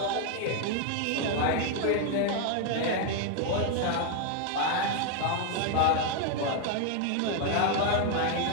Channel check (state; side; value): different; both; correlation 0.01